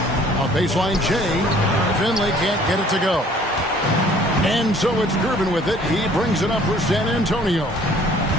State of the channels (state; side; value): normal; both; correlation 0.55